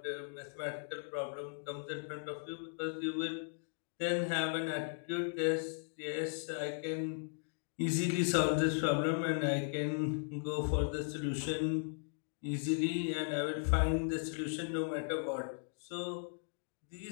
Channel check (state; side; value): silent; right; digital silence